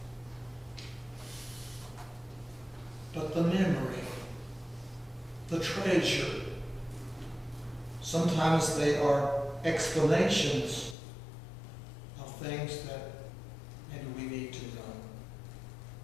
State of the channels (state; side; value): drops out; right; at 11.0 s